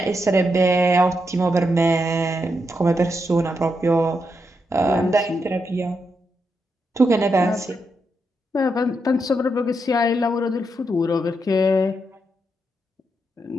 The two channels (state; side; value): normal; both; correlation 0.83